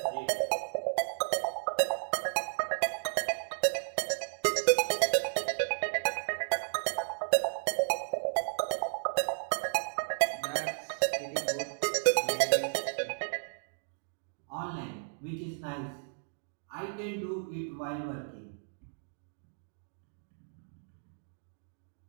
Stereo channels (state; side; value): silent; left; digital silence